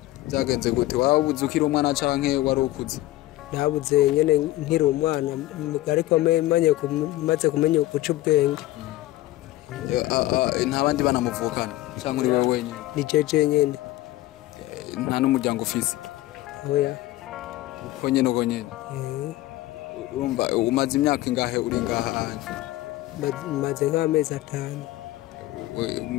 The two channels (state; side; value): quieter; right; 16.5 dB